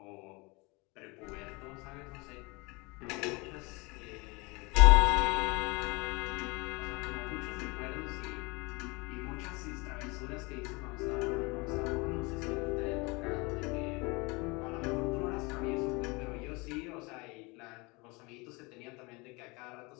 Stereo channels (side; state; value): right; quieter; 26.7 dB